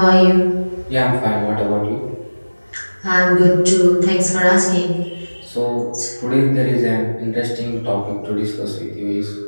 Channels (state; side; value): inverted; both; correlation -1.00